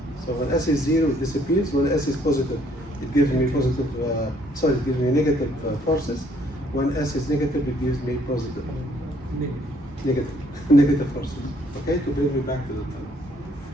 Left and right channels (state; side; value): normal; both; correlation 0.65